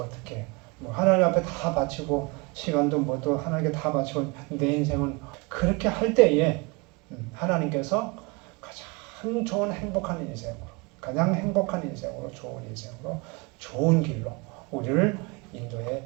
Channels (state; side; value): quieter; left; 28.1 dB